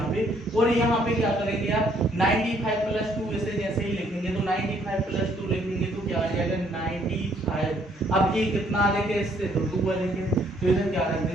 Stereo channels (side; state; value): both; normal; correlation 0.66